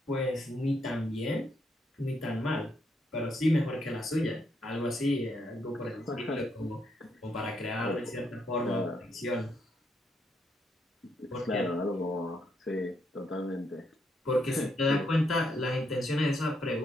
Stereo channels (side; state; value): both; normal; correlation 0.77